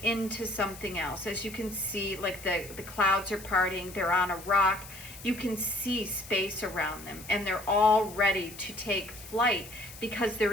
into something else. As you can see, like the clouds are parting, they're on a rock. You can see space around them, and they're all ready to take flight because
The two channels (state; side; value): noise; left; hiss, 16 dB below the sound